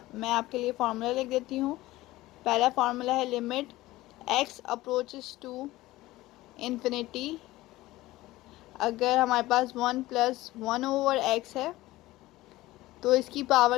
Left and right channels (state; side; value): quieter; right; 17.7 dB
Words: मैं आपके लिए फार्मूला लिख देती हूँ। पहला फार्मूला है limit x approaches to infinity. अगर हमारे पास 1 + 1/x है तो इसकी